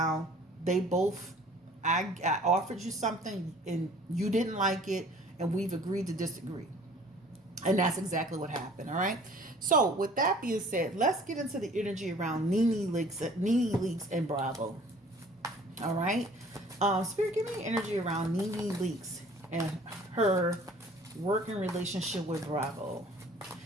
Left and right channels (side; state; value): both; normal; correlation 0.52